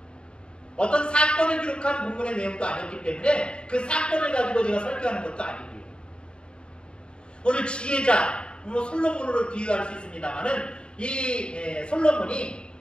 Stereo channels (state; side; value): late; right; 0.052 ms